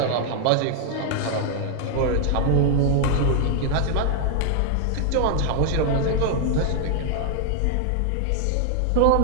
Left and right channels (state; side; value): different; both; correlation 0.00